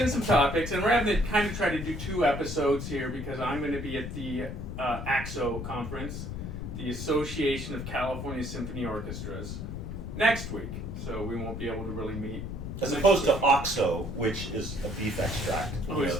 some topics, and we're having to kind of try to do 2 episodes here because I'm going to be at the AXO conference, the Association of California Symphony Orchestras, next week. So we won't be able to really meet. As next opposed to week. OXO, which is a beef extract. Oh, is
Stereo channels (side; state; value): left; noise; rumble, 6 dB below the sound